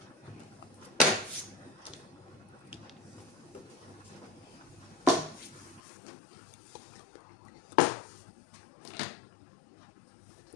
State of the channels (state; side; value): drops out; right; at 5.8 s